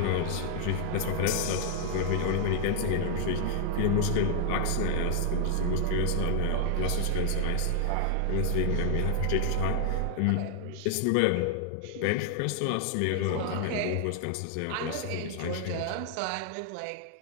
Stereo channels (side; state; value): both; different; correlation 0.00